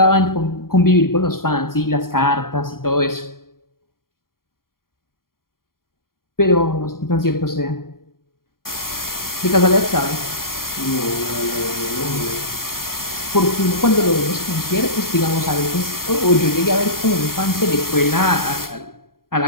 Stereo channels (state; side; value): late; right; 0.92 ms